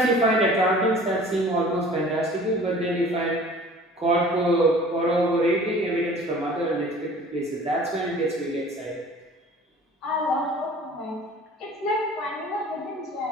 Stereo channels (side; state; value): both; normal; correlation 0.46